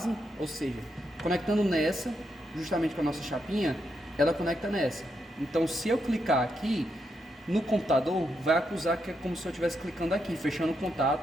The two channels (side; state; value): both; normal; correlation 0.82